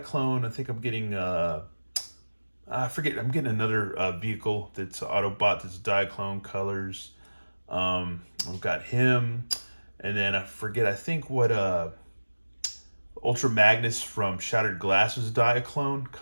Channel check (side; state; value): both; inverted; correlation -1.00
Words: I think I'm getting I forget. I'm getting another vehicle that's Autobot that's Diaclone colors. We've got him, and then I forget. I think what Ultra Magnus from Shattered Glass was Diaclone